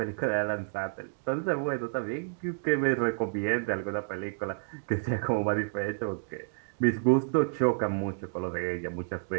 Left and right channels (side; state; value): left; silent; digital silence